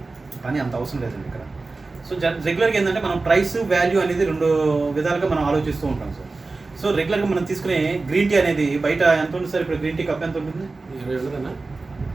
కానీ అంత అవసరం లేదండి ఇక్కడ. సో రెగ్యులర్గా ఏంటంటే మనం ప్రైస్ వాల్యూ అనేది రెండు విధాలుగా మనం ఆలోచిస్తూ ఉంటాం సార్. సో రెగ్యులర్గా మనం తీసుకునే గ్రీన్ టీ అనేది బయట ఎంత ఉంటుంది సార్? ఇప్పుడు గ్రీన్ టీ కప్ ఎంత ఉంటుంది? 20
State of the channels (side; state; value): left; quieter; 3.6 dB